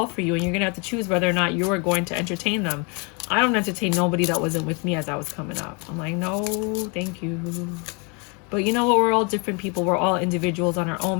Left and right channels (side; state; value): right; quieter; 32.9 dB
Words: for you, and you're going to have to choose whether or not you are going to entertain them. I don't entertain nobody that wasn't with me as I was coming up. I'm like, no, thank you. But you know what? We're all different people. We're all individuals on our